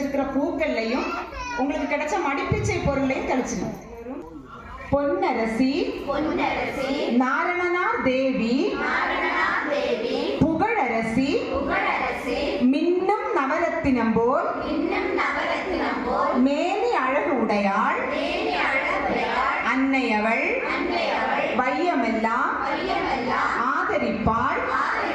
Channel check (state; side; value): identical; both; correlation 1.00